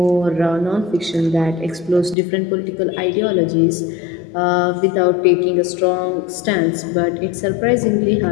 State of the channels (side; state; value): right; drops out; at 2.1 s